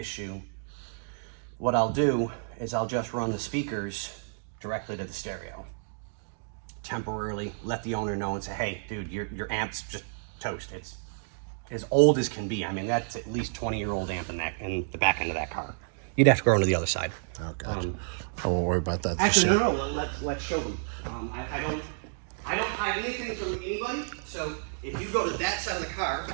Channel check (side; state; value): left; silent; digital silence